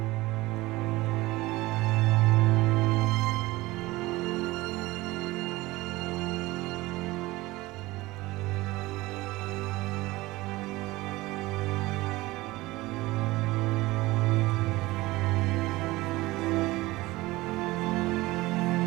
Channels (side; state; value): left; quieter; 19.7 dB